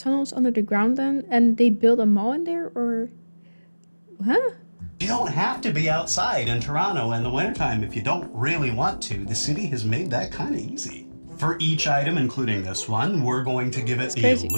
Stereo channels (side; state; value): both; inverted; correlation -1.00